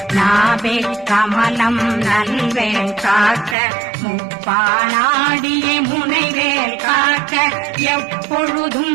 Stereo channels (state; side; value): drops out; left; at 3.6 s